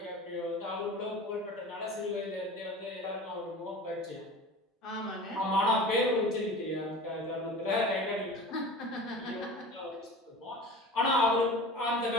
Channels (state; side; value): normal; both; correlation 0.36